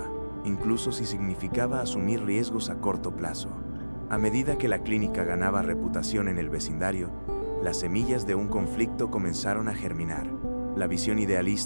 incluso si significaba asumir riesgos a corto plazo. A medida que la clínica ganaba reputación en el vecindario, las semillas de un conflicto comenzaron a germinar. La visión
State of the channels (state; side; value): inverted; both; correlation -1.00